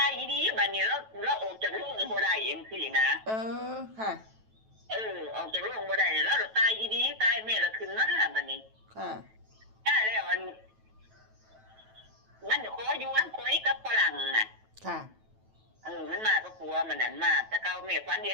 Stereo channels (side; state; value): left; late; 9.1 ms